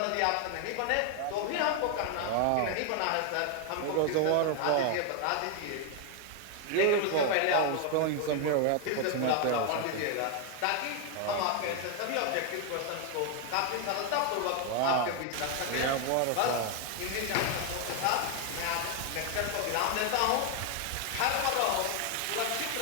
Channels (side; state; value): both; different; correlation 0.01